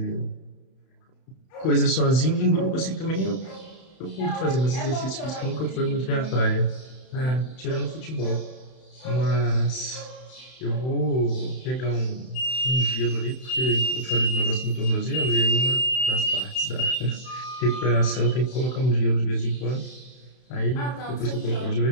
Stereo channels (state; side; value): late; right; 31 ms